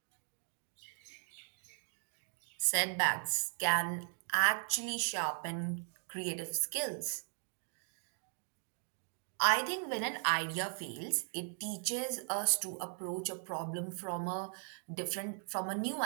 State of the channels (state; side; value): silent; left; 52 dB below the other